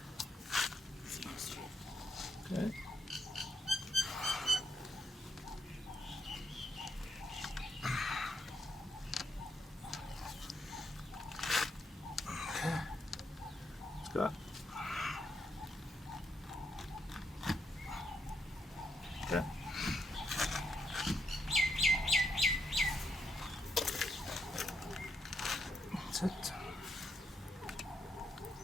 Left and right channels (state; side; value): normal; both; correlation 0.79